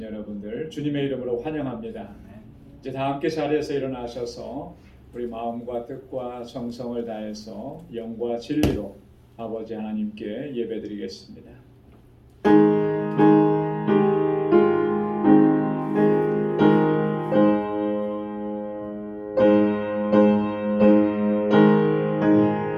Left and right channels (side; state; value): both; identical; correlation 1.00